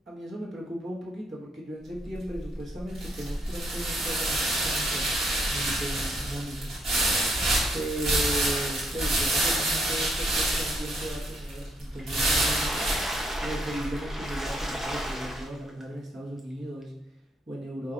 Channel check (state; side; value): normal; both; correlation 0.73